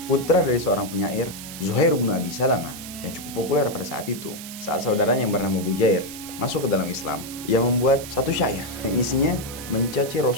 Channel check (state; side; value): noise; right; hiss, 12 dB below the sound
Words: putra dari seorang penyair Zuhair bin Abi Salamah yang cukup populer pada saat itu. Saat saudaranya yang bernama Bujair masuk ke dalam Islam, ia membuat satu syair yang isinya mencaci